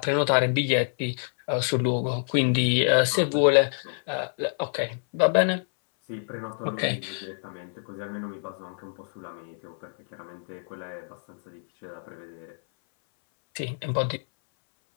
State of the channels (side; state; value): right; silent; 60 dB below the other